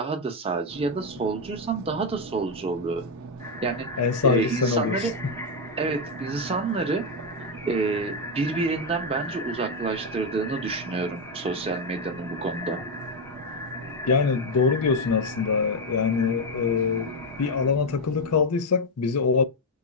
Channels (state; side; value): normal; both; correlation 0.05